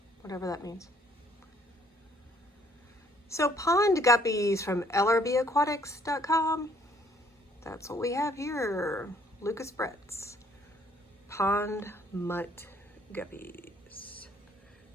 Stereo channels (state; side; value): normal; both; correlation 0.63